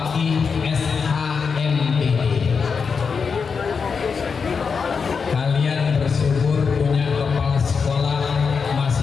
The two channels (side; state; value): right; quieter; 5.6 dB